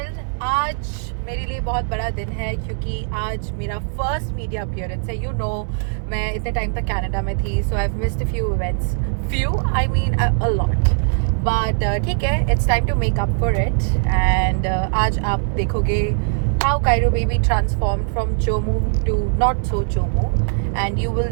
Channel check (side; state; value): left; silent; 61 dB below the other